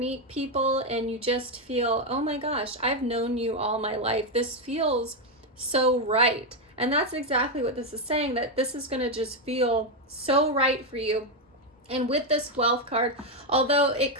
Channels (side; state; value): both; normal; correlation 0.04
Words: people and you just feel, oh my gosh, I've known you all my life. This feels so right. And that's exactly what this is saying, that this is going to just feel so right for you. And with this wealth card, although it